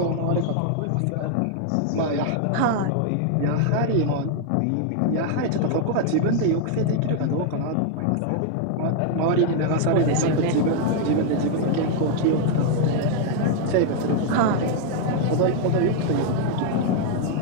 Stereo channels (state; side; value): different; both; correlation 0.00